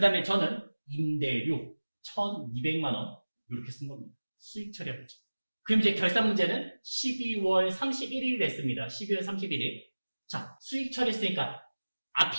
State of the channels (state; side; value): inverted; both; correlation -1.00